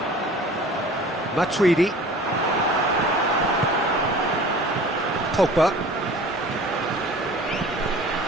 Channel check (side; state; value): both; normal; correlation 0.44